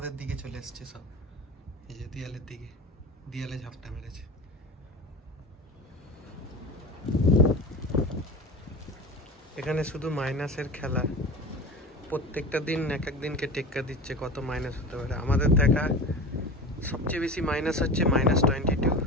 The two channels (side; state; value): both; normal; correlation 0.31